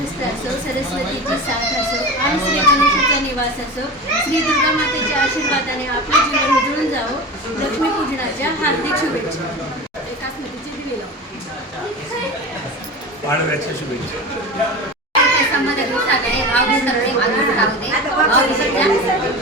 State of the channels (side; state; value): both; normal; correlation 0.29